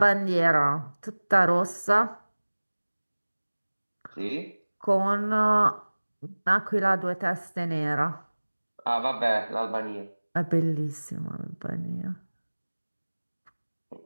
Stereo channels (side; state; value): both; inverted; correlation -1.00